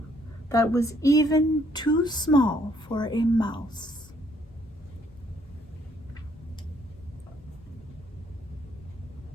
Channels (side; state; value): both; normal; correlation 0.67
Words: that was even too small for a mouse.